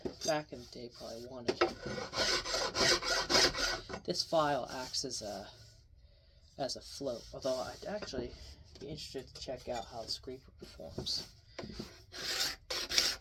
back in the day probably wanted. This file acts as a float, although I'd actually be interested to check out how the scraper performs.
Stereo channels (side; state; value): both; identical; correlation 1.00